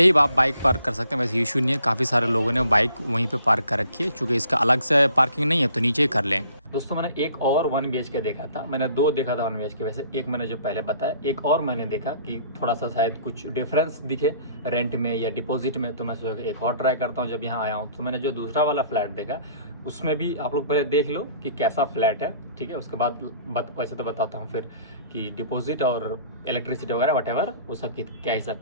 ही आप बाइक पार्क कर सकते हैं, वैसे इशू नहीं है। काफ़ी सारे लोगों ने बाइक वहीं पे पार्क कर रखी है, चूँकि इसका अलग से पार्किंग नहीं है तो नीचे ही कर लें। दोस्तों मैंने एक और 1 BHK देखा था, मैंने 2 देखा था 1 BHK। वैसे एक मैंने जो पहले बताया, एक और मैंने देखा कि थोड़ा सा शायद कुछ डिफरेंस दिखे रेंट में या डिपॉजिट में, तो मैं सोचा एक और ट्राई करता हूँ जब यहाँ आया हूँ। तो मैंने जो दूसरा वाला फ्लैट देखा उसमें भी आप लोग पहले देख लो कि कैसा फ्लैट है, ठीक है। उसके बाद वैसे तो बताता हूँ फिर कि डिपॉजिट और इलेक्ट्रिसिटी वगैरह वटेवर वो सब की क्या हिसाब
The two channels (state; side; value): inverted; both; correlation -0.56